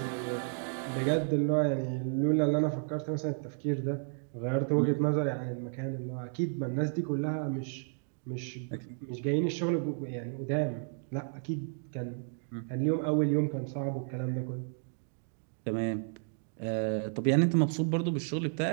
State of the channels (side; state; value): left; silent; 56 dB below the other